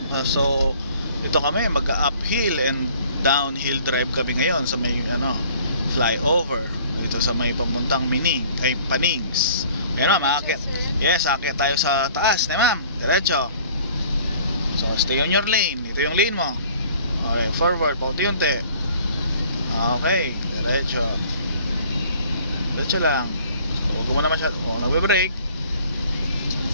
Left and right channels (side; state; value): both; inverted; correlation -0.53